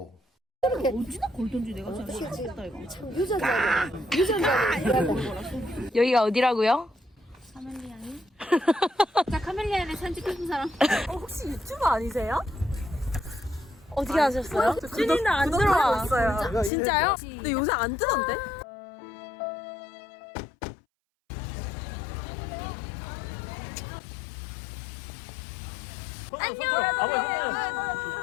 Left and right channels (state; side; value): drops out; right; at 16.7 s